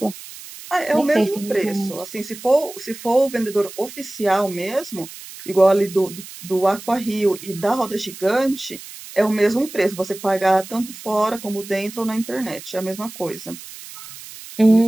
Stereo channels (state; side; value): noise; right; hiss, 15 dB below the sound